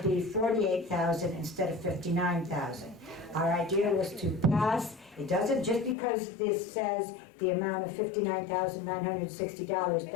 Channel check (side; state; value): right; drops out; at 6.0 s